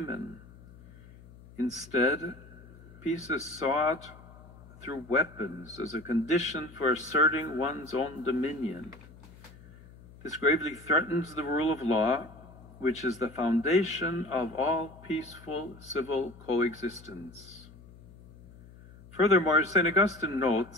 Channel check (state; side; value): noise; left; hum, 21 dB below the sound